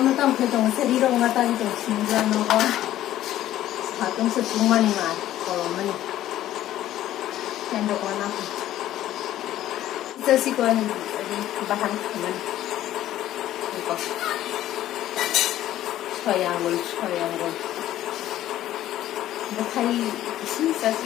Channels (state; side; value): quieter; right; 13.2 dB